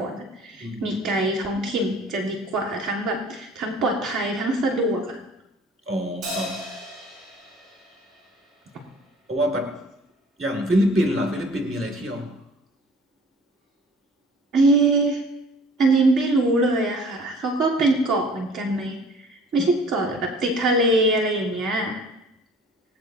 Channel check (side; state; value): both; normal; correlation 0.49